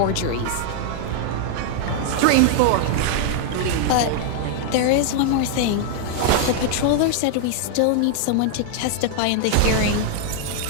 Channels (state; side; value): different; both; correlation 0.00